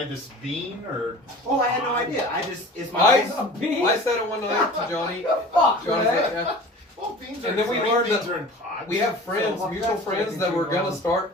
this bean or? Oh, I had no idea. I just it's my. I said it one night to Johnny. Fuck, Johnny's man. like, yeah. Well, beans And are then we green learned beans that are in pods. We have friends, So- mutual that's friends fucking that were too gonna long.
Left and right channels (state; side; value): normal; both; correlation 0.41